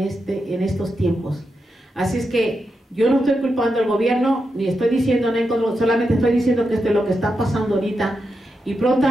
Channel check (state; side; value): normal; both; correlation 0.87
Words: estos tiempos. Así es que yo no estoy culpando al gobierno, ni estoy diciendo nada, solamente estoy diciendo que esto es lo que está pasando ahorita, y